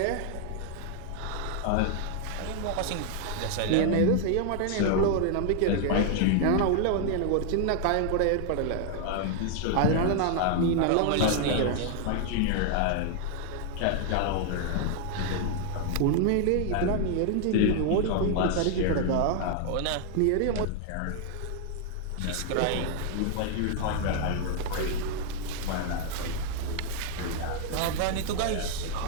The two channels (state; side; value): different; both; correlation 0.00